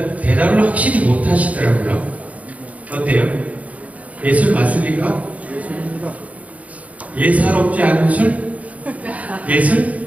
대답을 확실히 못 하시더라고요. 어때요? 예술 맞습니까? 예사롭지 않은 술? 예술?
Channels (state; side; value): late; left; 0.069 ms